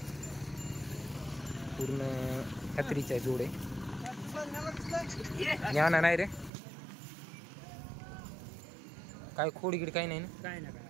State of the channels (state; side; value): drops out; left; at 6.5 s